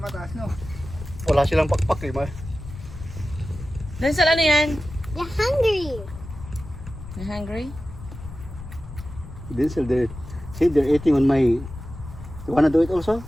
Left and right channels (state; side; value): noise; left; rumble, 13 dB below the sound